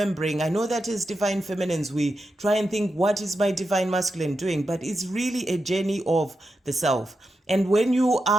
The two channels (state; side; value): normal; both; correlation 0.88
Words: I know that as divine feminines, we try and think, what is my divine masculine doing? But it's really a journey of the self. And when you